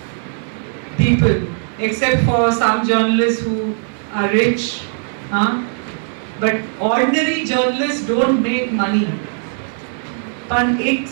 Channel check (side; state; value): left; silent; 59 dB below the other